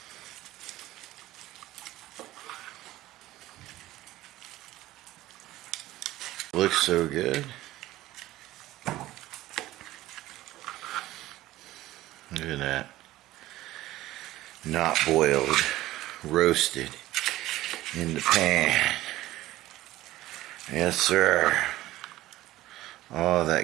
Looks so good. Look at that. Not boiled, roasted in the pan. Yes, sir. All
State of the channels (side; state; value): left; quieter; 16.1 dB